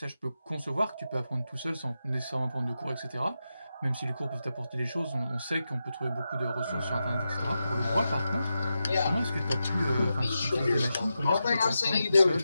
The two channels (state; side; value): inverted; both; correlation -0.89